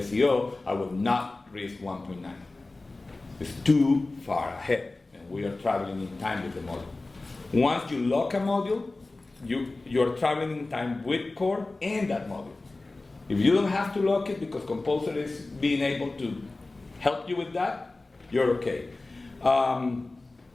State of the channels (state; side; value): quieter; right; 3.2 dB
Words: I will not risk 1.9. It's too far ahead, and we are traveling in time with the module. Once you lock a module, you're traveling in time with core and that module. If you don't have to lock it because Composer is being able to help you with that, you're okay.